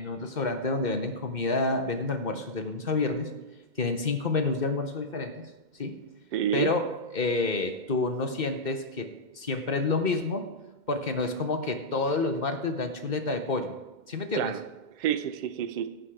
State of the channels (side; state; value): left; late; 2.1 ms